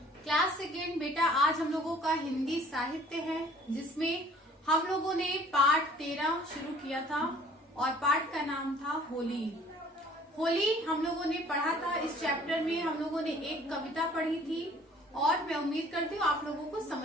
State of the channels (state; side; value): normal; both; correlation 0.53